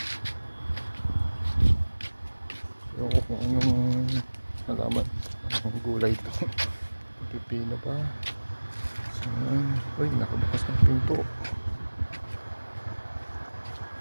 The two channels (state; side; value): inverted; both; correlation -1.00